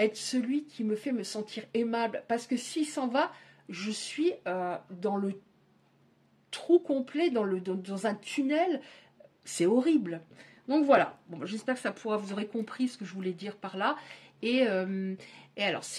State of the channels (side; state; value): both; identical; correlation 1.00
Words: celui qui me fait me sentir aimable, parce que s'il s'en va, je suis dans le trou complet, dans un tunnel, c'est horrible. Donc voilà, bon, j'espère que vous aurez compris ce que je voulais dire par là, et alors